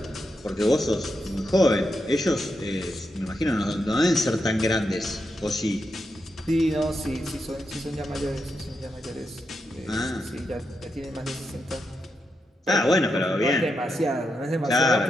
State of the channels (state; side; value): normal; both; correlation 0.85